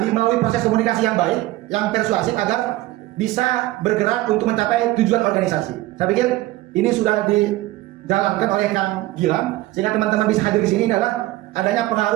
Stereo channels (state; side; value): quieter; left; 17.5 dB